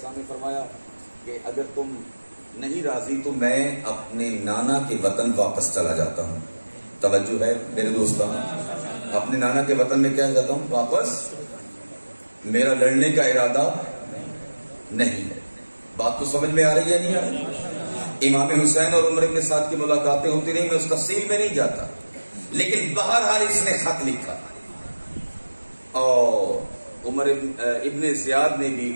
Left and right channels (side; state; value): both; inverted; correlation -1.00